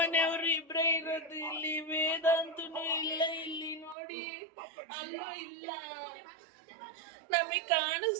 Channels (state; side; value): drops out; left; at 4.0 s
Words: ಇಬ್ರೇ ಇರೋದು ಇಲ್ಲಿ. ವೇದಾಂತನು ಇಲ್ಲ ಇಲ್ಲಿ ನೋಡಿ, ಅಲ್ಲೂ ಇಲ್ಲ. ನಮಗ್